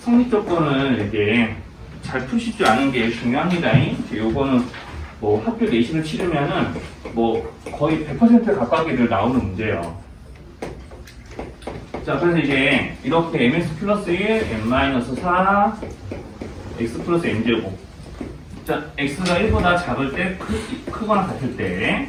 조건을 이제 잘 푸실 줄 아는 게 중요합니다. 이제 요거는 뭐 학교 내신을 치르면은 뭐 거의 100% 가까이들 나오는 문제예요. 자, 그래서 이제 이렇게 mx 플러스 1, n-4, x 플러스 n제곱. 자, x가 1보다 작을 때 크거나 같을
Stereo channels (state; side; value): identical; both; correlation 1.00